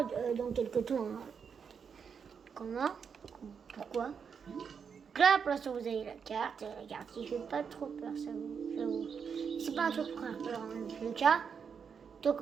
dans quelques temps. Hein. Comment? Pourquoi? Donc là, pour l'instant, vous avez la carte. La carte qui fait pas trop peur, ça j'avoue. C'est pas un truc pour faire peur, en tout cas. Donc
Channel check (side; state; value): left; quieter; 6.5 dB